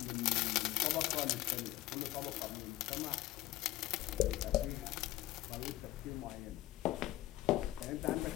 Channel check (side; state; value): right; quieter; 16.1 dB